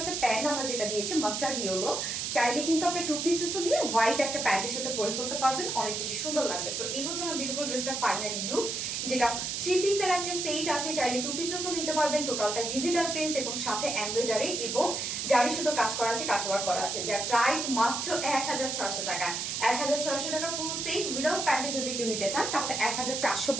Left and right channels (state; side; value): noise; right; hiss, 2 dB below the sound